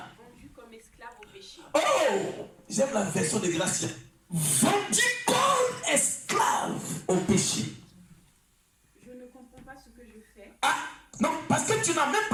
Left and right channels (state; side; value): identical; both; correlation 1.00